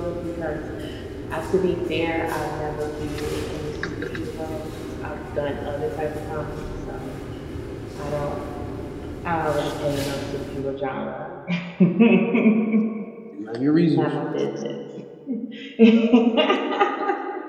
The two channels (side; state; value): both; identical; correlation 1.00